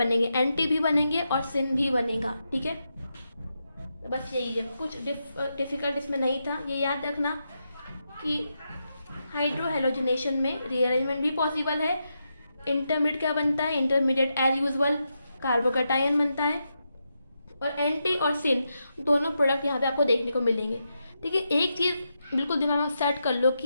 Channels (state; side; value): inverted; both; correlation -0.85